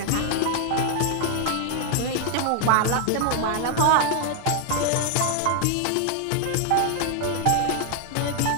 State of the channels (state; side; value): different; both; correlation 0.00